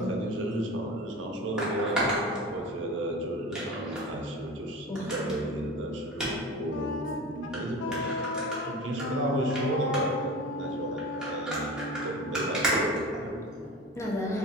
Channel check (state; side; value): normal; both; correlation 0.32